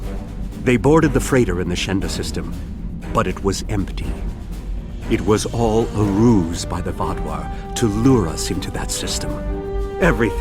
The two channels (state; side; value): identical; both; correlation 1.00